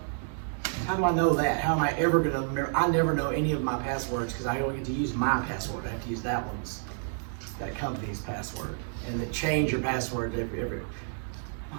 How do I know that? How am I ever gonna remember? I never know any of my passwords because I only get to use my password. I have to use that company's password. And then change your password every.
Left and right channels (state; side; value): silent; left; 58 dB below the other